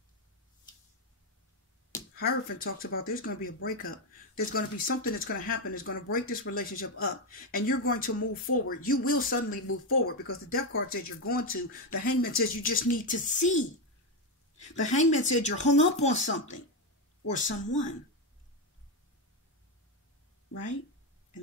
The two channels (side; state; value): both; normal; correlation 0.08